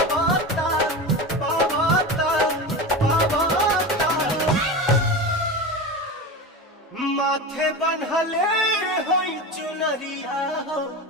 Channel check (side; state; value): both; normal; correlation 0.25